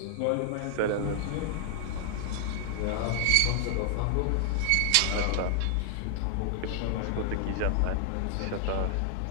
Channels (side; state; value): both; different; correlation 0.00